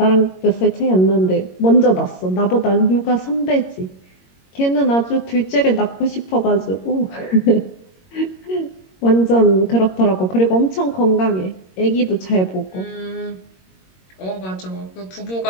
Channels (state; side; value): late; right; 22 ms